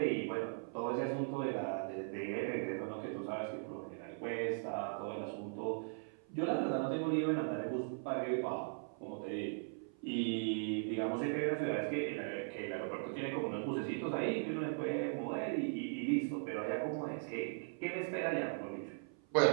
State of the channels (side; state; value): left; silent; 52 dB below the other